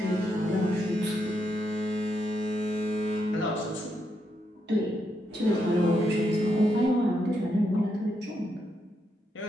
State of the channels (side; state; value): both; normal; correlation 0.80